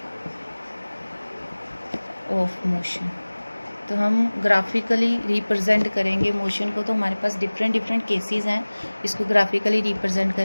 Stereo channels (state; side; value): inverted; both; correlation -1.00